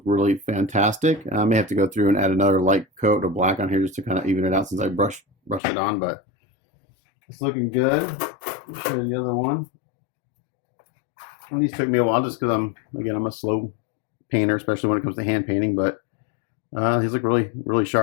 really fantastic. I may have to go through and add another light coat of black on here just to kind of even it out since I brushed it on, but it's looking good. I'll show you the other one. And these took me a while just because I'm a slow painter, especially when it comes to hand painting, but these look really, really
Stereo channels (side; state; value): right; drops out; at 5.6 s